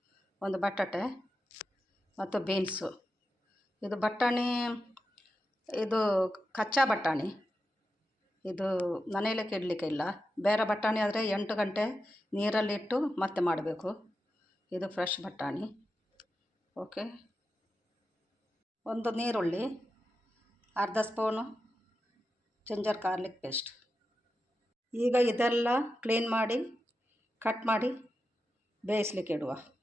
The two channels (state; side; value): normal; both; correlation 0.90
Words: ಒಂದು ಬಟಾಟೆ ಮತ್ತು ಬೀನ್ಸು. ಇದು ಬಟಾಣಿ, ಇದು ಕಚ್ಚಾ ಬಟಾಣಿ. ಇದು ಮನೆಯಲ್ಲೇ ಇಡಲಿಕ್ಕೆ ಇಲ್ಲ. ಬೇರೆ ಬಟಾಣಿ ಆದರೆ 8 ಗಂಟೆ ನೀರಲ್ಲಿಟ್ಟು ಮತ್ತೆ ಮಾಡಬೇಕು. ಇದು ಫ್ರೆಶ್ ಬಟಾಣಿ. ಓಕೆ, ಒಂದು ನೀರುಳ್ಳಿ, ಅರ್ಧ ಸ್ಪೂನು ಜಿಂಜರ್ ಗಾರ್ಲಿಕ್ ಪೇಸ್ಟ್. ಈಗ ಇದೆಲ್ಲ ಕ್ಲೀನ್ ಮಾಡಿ ಕಟ್ ಮಾಡಿ ಬೇಯಿಸ್ಲಿಕ್ಕೆ ಇಡುವ.